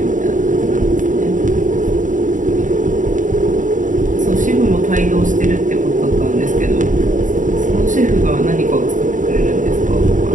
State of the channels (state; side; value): late; left; 0.37 ms